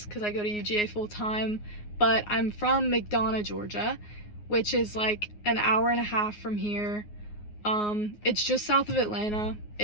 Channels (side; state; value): right; late; 9.6 ms